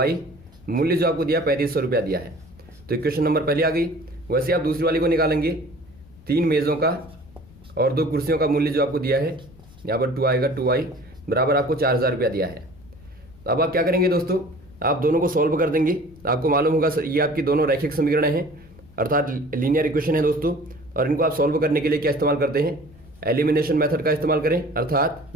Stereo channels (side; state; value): left; noise; rumble, 24 dB below the sound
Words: मूल्य जो आपको दिया 3500 रुपया दिया है। तो इक्वेशन नंबर पहले आ गई। वैसे आप दूसरी वाली को निकालेंगे, 3 मेज़ों का और 2 कुर्सियों का मूल्य जो आपको दिया है, यहाँ पर 2 आएगा, 2y बराबर आपको 4000 रुपया दिया है। अब आप क्या करेंगे दोस्तों, आप दोनों को सॉल्व कर देंगे। आपको मालूम होगा ये आपकी दोनों रैखिक समीकरण हैं अर्थात लीनियर इक्वेशन है दोस्तों, और इनको आप सॉल्व करने के लिए क्या इस्तेमाल करते हैं, एलिमिनेशन मेथड का इस्तेमाल करें, अर्थात